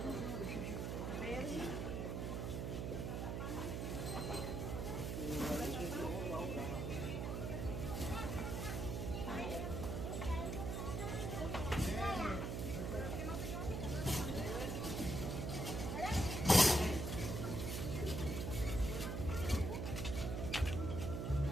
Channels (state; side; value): noise; right; hum, 2 dB below the sound